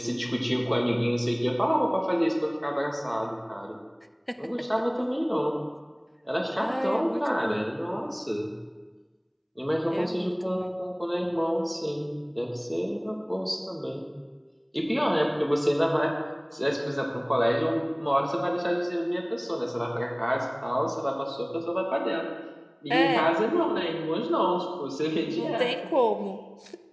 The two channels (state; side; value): identical; both; correlation 1.00